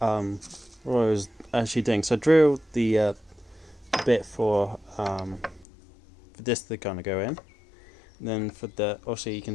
actually doing, so I drilled the bit for this to kind of go in, and then for the, obviously you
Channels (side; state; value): right; drops out; at 5.7 s